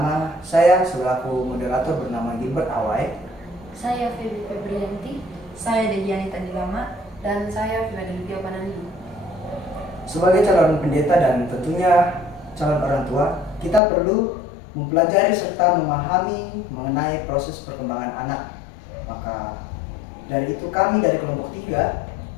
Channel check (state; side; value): drops out; right; at 13.8 s